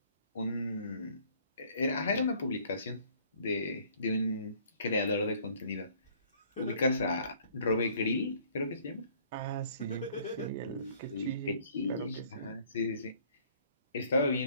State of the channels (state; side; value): inverted; both; correlation -0.58